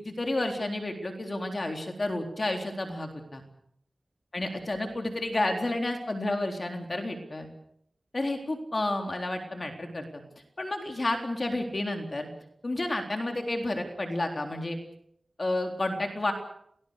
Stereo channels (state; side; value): normal; both; correlation 0.97